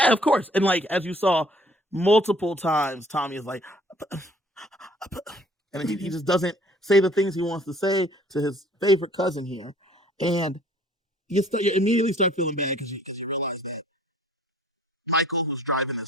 of course. And like, as you saw multiple times, Tommy is like, and he just doesn't say the things he wants to say to his favorite cousin here. And you immediately start feeling bad because you realize that Michael, who's driving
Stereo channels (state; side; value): normal; both; correlation 0.56